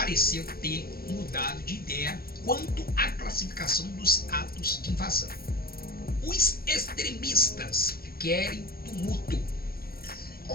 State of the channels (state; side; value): late; right; 0.44 ms